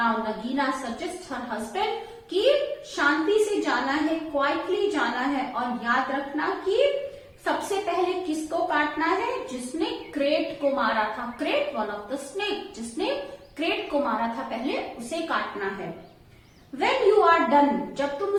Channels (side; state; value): both; identical; correlation 1.00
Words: Nagina suggests her husband कि शांति से जाना है, क्वाइटली जाना है, और याद रखना कि सबसे पहले किसको काटना है? जिसने क्रेट को मारा था. Crate, one of the snake, जिसने क्रेट को मारा था पहले, उसे काटना है. When you are done, जब तुम